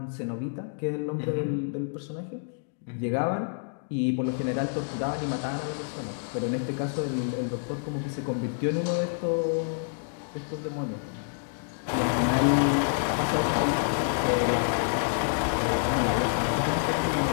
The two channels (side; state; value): right; silent; digital silence